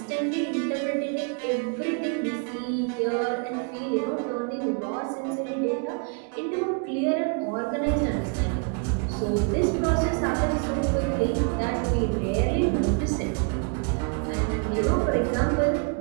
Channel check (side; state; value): left; quieter; 37.4 dB